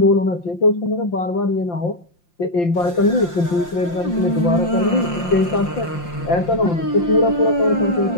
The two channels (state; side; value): late; right; 5.7 ms